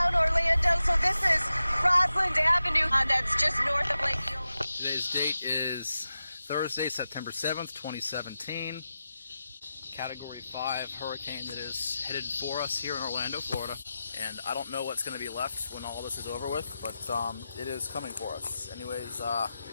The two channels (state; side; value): inverted; both; correlation -0.92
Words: Orlando, so this is Roslyn Avenue. That's just north of Lake Eola. Today's date is Thursday, September 7th, 2017. Category 5 hurricane that is headed for us here in Orlando, Florida. And I don't know what's going to be left when all this is over with, but it is coming for us. Anyways, they